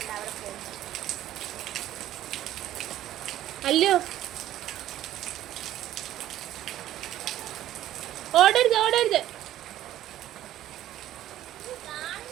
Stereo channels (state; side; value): quieter; left; 13.0 dB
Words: അവിടെ പോകുന്നു. അല്ലോ, ഓടരുത് ഓടരുത്.